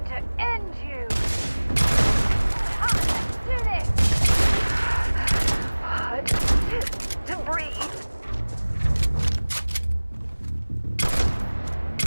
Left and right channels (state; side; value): inverted; both; correlation -1.00